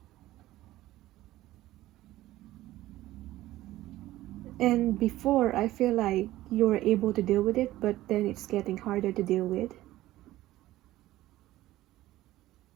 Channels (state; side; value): quieter; left; 15.8 dB